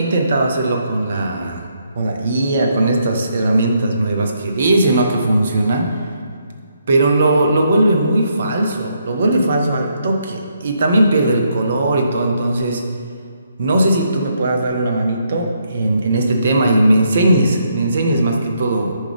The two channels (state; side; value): inverted; both; correlation -0.75